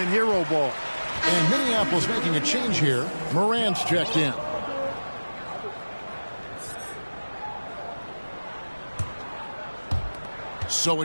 hero ball. And Minneapolis making a change here. Morant's checked in. So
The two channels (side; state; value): both; inverted; correlation -1.00